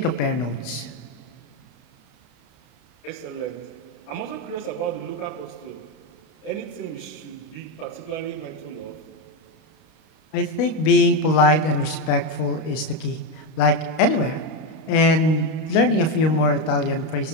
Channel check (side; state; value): right; late; 32 ms